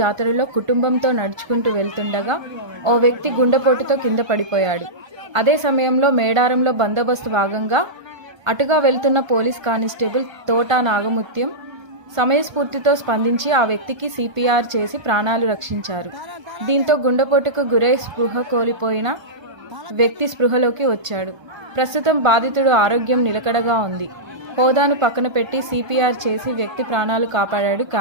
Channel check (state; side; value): late; left; 1.3 ms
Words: కుటుంబంతో నడుచుకుంటూ వెళ్తుండగా ఓ వ్యక్తి గుండెపోటుతో కింద పడిపోయాడు. అదే సమయంలో మేడారంలో బందోబస్తు భాగంగా అటుగా వెళ్తున్న పోలీస్ కానిస్టేబుల్ తోటా నాగముత్యం సమయస్ఫూర్తితో స్పందించి ఆ వ్యక్తికి CPR చేసి ప్రాణాలు రక్షించారు. దీంతో గుండెపోటుకు గురై స్పృహ కోల్పోయిన వ్యక్తి స్పృహలోకి వచ్చాడు. ప్రస్తుతం బాధితుడు ఆరోగ్యం నిలకడగా ఉంది. హోదాను పక్కన పెట్టి CPR చేసి వ్యక్తి ప్రాణాలు కాపాడాడు